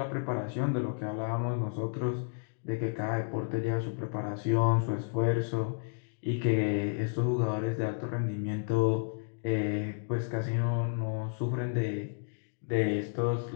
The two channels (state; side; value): silent; right; digital silence